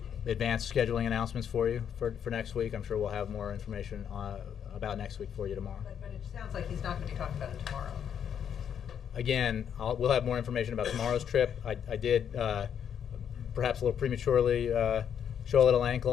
advanced scheduling announcements for you for next week. I'm sure we'll have more information about next week for you tomorrow. But it sounds like he's not going to be talking about it tomorrow. Again, we'll have more information about tomorrow's trip. I did, perhaps a little prematurely, show a little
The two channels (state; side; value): quieter; right; 8.5 dB